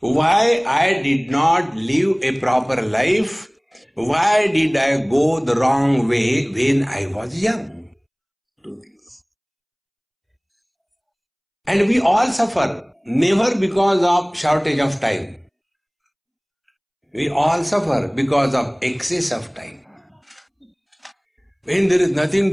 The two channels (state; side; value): identical; both; correlation 1.00